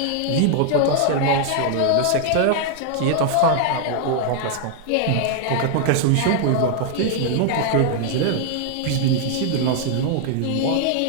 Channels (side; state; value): both; different; correlation 0.00